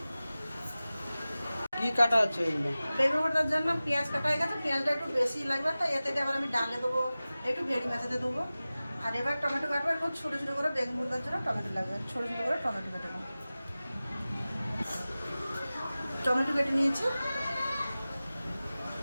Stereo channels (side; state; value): both; inverted; correlation -0.97